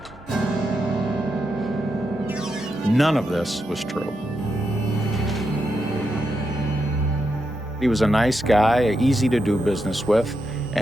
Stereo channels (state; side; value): normal; both; correlation 0.84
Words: None of this was true. He was a nice guy, easy to do business with,